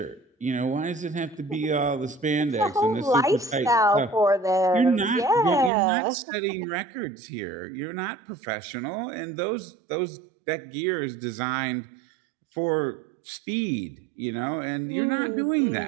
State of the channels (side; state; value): left; drops out; at 5.7 s